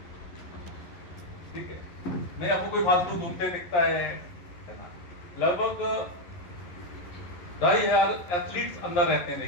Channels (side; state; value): right; late; 11 ms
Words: ठीक है, नहीं आपको कोई फालतू घूमते दिखता है ना, लगभग 2,500 एथलीट्स अंदर रहते हैं,